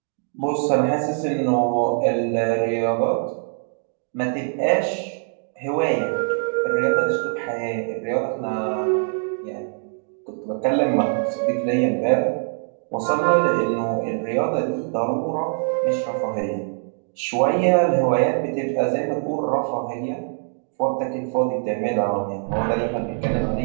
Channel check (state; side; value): silent; left; 62 dB below the other